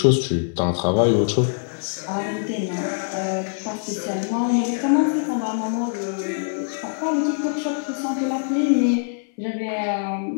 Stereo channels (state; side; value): silent; right; 63 dB below the other